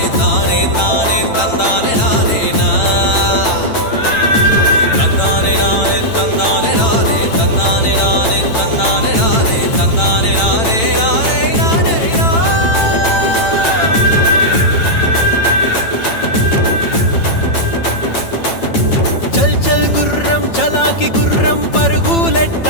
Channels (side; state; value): right; late; 9.0 ms